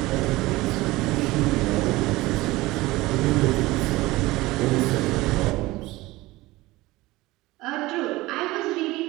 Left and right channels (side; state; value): left; quieter; 19.6 dB